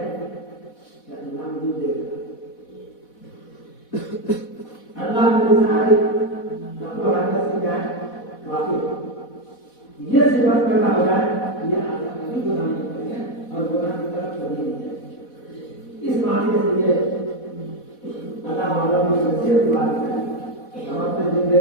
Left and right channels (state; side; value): late; right; 4.1 ms